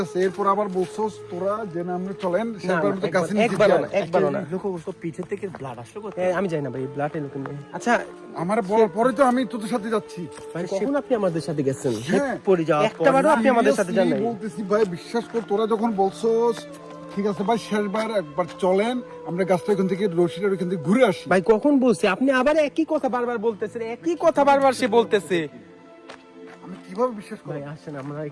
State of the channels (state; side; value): identical; both; correlation 1.00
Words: এরপর আবার বলছো তোরা যে না আমরা চলেন সেবার মতো গাছের নিচে একবারও না, যাই। একবারও না। লক্ষ্য করছো পিছে থেকে ব্লাড আসলো কোথা এ, আমি যাই না ভাই, ব্লাড এলো কেন? আচ্ছা আমার বলার পরে তো আমি তোদের সাথে যাচ্ছি। ভাই কখন আপনি আমাদের সাথে গেছেন? হ্যাঁ পড়ে যাওয়ার একটা বারও আপনি আমাদের সাথে যান নাই। Seriously বলতেছি ভাই, বিশ্বাস কর, তোরা যখন বলছোস ঠিক আছে ভাই শেষবার একবার চলেন আমরা গাছটা ওখান থেকে রশিটার ওখান থেকে ঘুরে আসি। ভাই কখন বলছি? আপনি আবার একই কথা বারবার বলতেছেন, একই কথা বারবার সে বলতেছে। আমি কিভাবে বিশ্বাস করি? ভাই আসেন আমরা